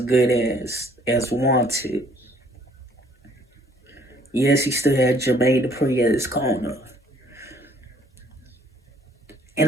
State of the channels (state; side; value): normal; both; correlation 0.61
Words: as Wanted. Yes, he still had Jermaine Dupri at his corner,